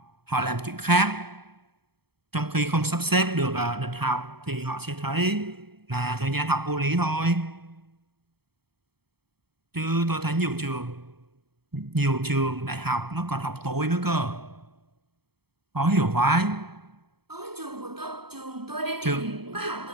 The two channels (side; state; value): left; late; 0.96 ms